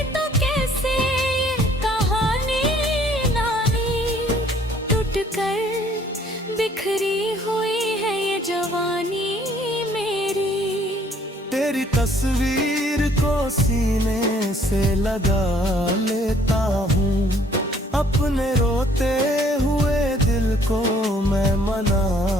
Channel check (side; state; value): both; normal; correlation 0.60